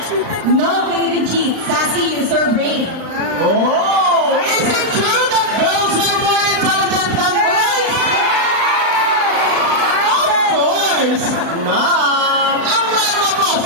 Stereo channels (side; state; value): left; late; 36 ms